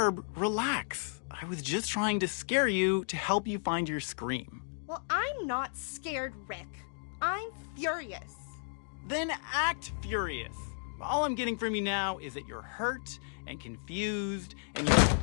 relax. I was just trying to scare you to help you find your scream. Well, I'm not scared, Rick. I'm furious. Then act furious. All I'm getting from you now is that you're hurt and confused and you're...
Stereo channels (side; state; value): right; silent; digital silence